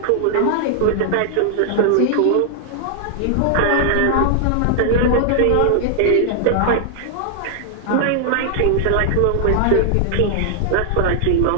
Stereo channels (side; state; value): both; different; correlation 0.00